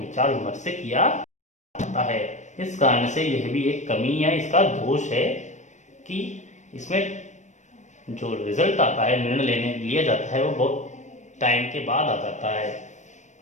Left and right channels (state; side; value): late; right; 0.35 ms